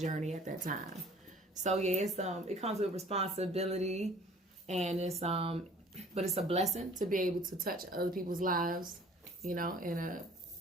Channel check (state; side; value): normal; both; correlation 0.51